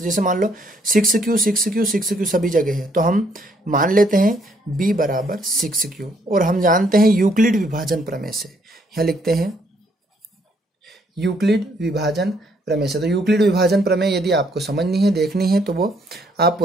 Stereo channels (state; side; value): normal; both; correlation 0.69